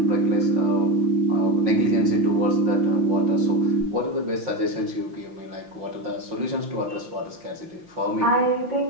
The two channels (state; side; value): late; left; 5.8 ms